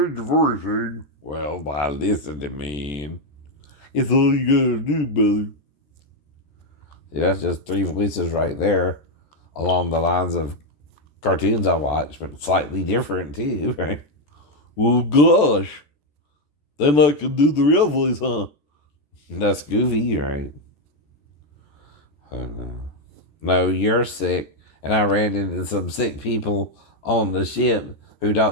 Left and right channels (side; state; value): right; late; 14 ms